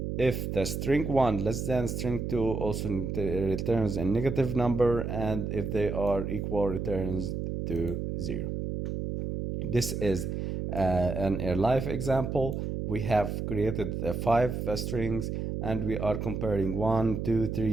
If the string 1 less than string 2, also returns a negative number, and if they are equal, returns to 0. This is a live example. We have created 5 strings, and we are comparing 1, 2,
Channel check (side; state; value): right; noise; hum, 3 dB below the sound